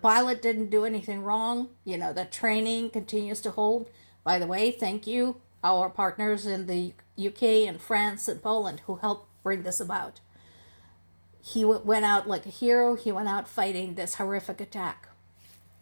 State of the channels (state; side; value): inverted; both; correlation -1.00